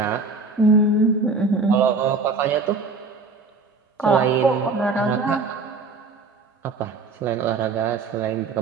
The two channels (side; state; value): left; quieter; 4.0 dB